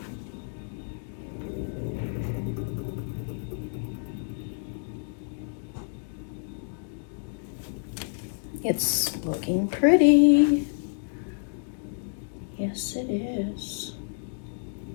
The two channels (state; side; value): silent; right; digital silence